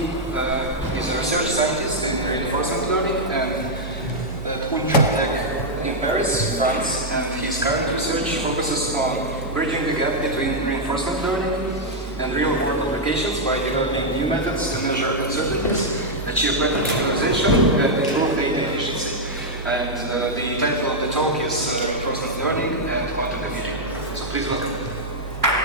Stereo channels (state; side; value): normal; both; correlation -0.03